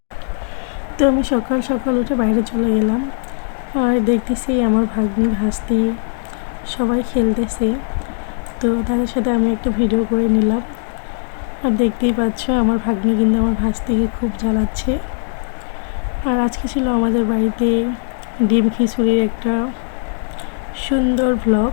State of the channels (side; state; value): right; silent; digital silence